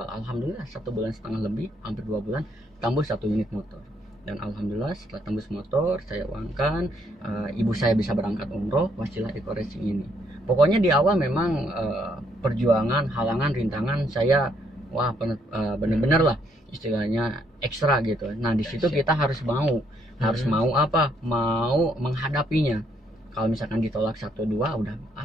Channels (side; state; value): both; normal; correlation 0.71